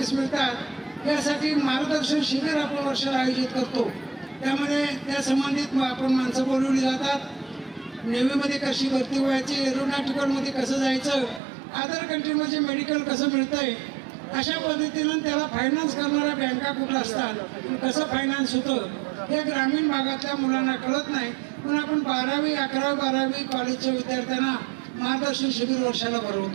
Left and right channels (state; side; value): drops out; left; at 11.4 s